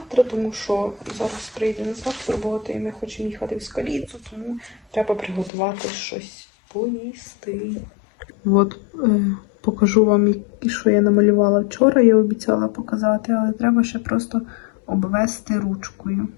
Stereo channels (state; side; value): drops out; right; at 5.5 s